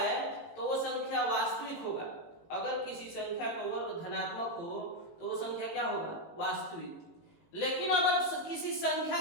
तो वो संख्या वास्तविक होगा। अगर किसी संख्या का वर्ग धनात्मक हो तो वो संख्या क्या होगा? वास्तविक। लेकिन अगर किसी संख्या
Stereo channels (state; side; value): late; right; 18 ms